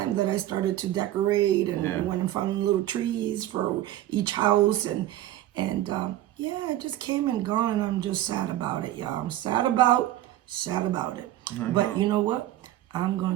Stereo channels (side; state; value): left; quieter; 13.9 dB